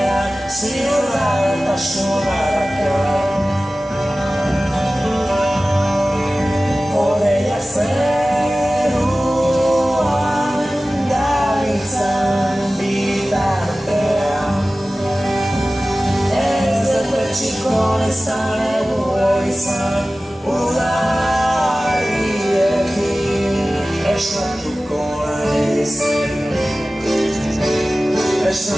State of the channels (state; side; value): normal; both; correlation 0.96